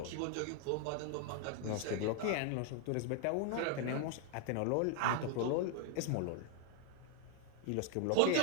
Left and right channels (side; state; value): both; different; correlation 0.00